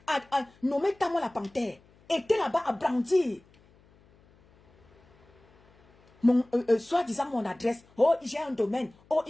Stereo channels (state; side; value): noise; left; hum, 30 dB below the sound